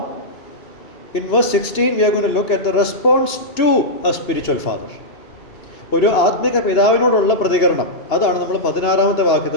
in verse 16 we are going to look at the response to a spiritual father. ഒരു ആത്മിക പിതാവിനോടുള്ള പ്രതികരണം, അതാണ് നമ്മൾ 16-ാമത്തെ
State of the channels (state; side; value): late; right; 2.9 ms